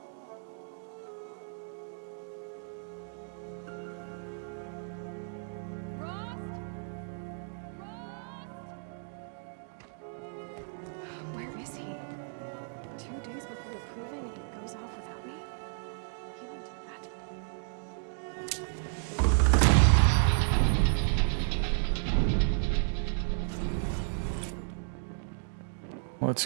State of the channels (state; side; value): silent; left; digital silence